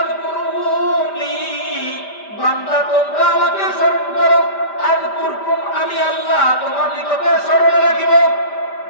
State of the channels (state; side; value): late; right; 5.0 ms